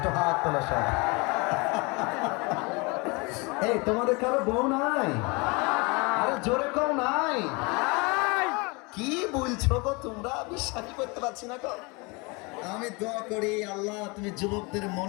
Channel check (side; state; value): right; quieter; 27.9 dB